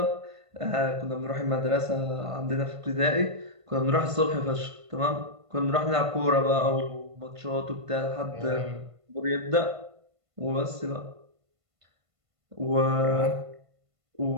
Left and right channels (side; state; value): left; late; 1.5 ms